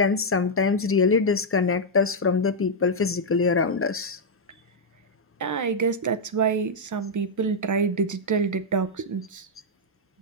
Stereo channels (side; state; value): both; normal; correlation -0.04